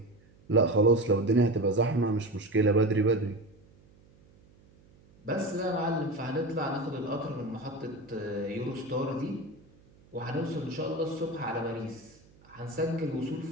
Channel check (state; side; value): noise; right; hum, 28 dB below the sound